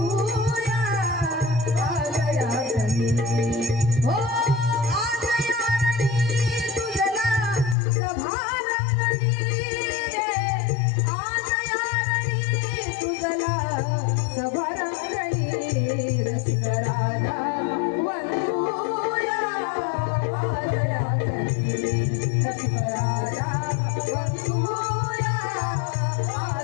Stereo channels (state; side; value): drops out; right; at 7.8 s